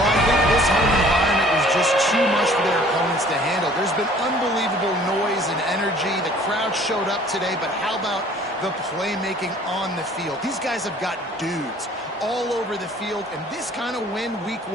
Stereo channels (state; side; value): normal; both; correlation 0.53